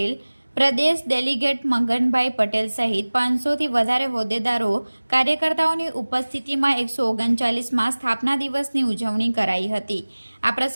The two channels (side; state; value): both; inverted; correlation -1.00